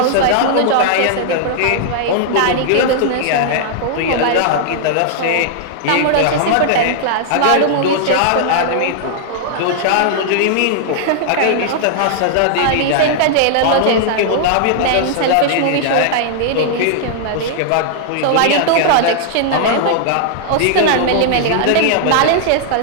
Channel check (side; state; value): both; different; correlation -0.01